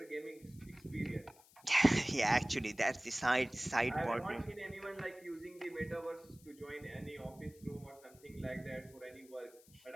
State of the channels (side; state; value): left; noise; hiss, 25 dB below the sound